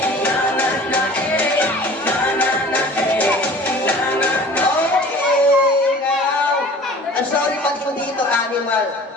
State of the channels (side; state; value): both; normal; correlation 0.45